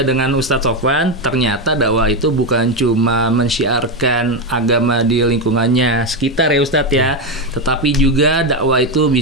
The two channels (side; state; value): both; normal; correlation 0.09